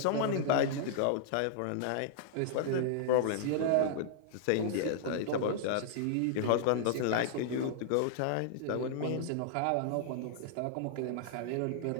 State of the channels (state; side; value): different; both; correlation -0.01